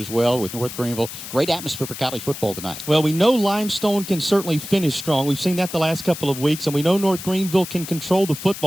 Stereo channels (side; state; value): left; noise; hiss, 11 dB below the sound